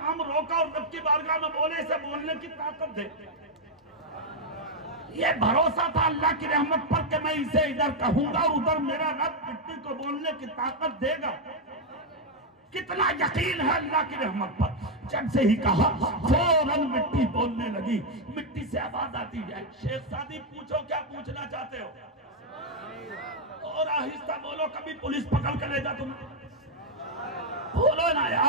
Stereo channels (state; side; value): normal; both; correlation 0.01